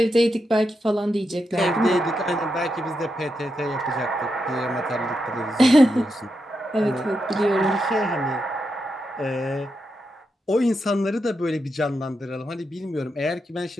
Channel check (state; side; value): normal; both; correlation 0.85